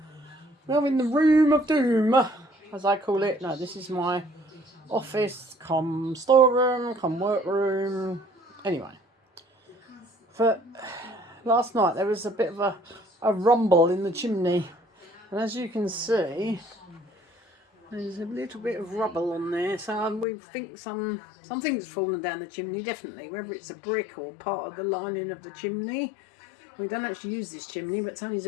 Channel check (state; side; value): drops out; right; at 20.2 s